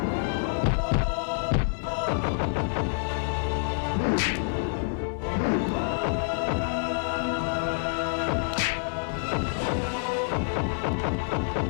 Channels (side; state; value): right; silent; digital silence